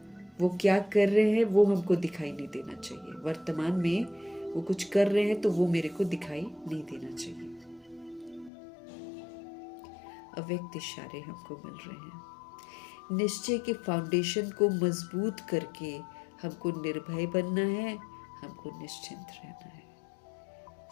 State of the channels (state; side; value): drops out; right; at 8.5 s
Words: वो क्या कर रहे हैं वो हमको दिखाई नहीं देना चाहिए। वर्तमान में वो कुछ कर रहे हैं तो वो मेरे को दिखाई नहीं देना चाहिए। अव्यक्त इशारे हमको मिल रहे हैं। निश्चय के फाउंडेशन को मजबूत करके हमको निर्भय बनना है, हमको निश्चिंत रहना है।